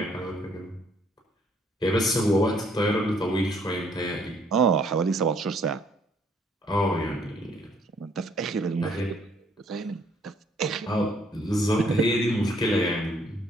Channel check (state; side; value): normal; both; correlation 0.65